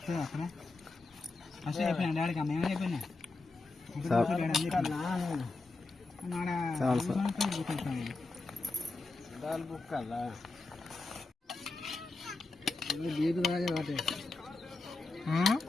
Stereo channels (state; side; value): quieter; right; 3.4 dB